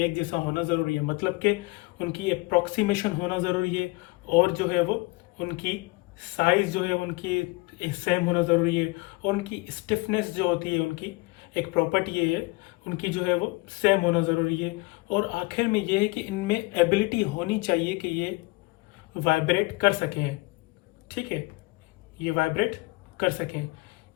जैसा होना ज़रूरी है, मतलब कि उनकी अप्रॉक्सीमेशन होना ज़रूरी है। और जो है वो उनकी साइज जो है उनकी सेम होना ज़रूरी है। और उनकी स्टिफनेस जो होती है, उनकी एक प्रॉपर्टी ये है, उनकी जो है वो सेम होना ज़रूरी है। और आखिर में ये है कि इनमें एबिलिटी होनी चाहिए कि ये वाइब्रेट कर सकें। ठीक है। ये वाइब्रेट कर सकें।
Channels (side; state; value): right; quieter; 24.6 dB